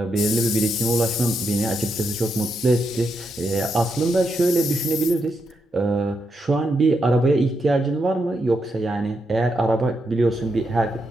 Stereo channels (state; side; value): normal; both; correlation 0.82